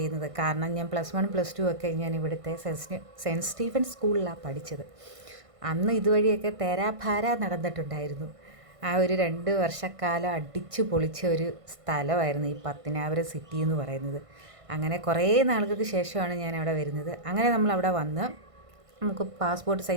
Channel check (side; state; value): left; late; 1.5 ms